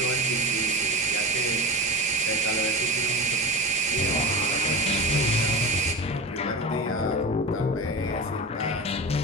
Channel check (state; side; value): normal; both; correlation 0.27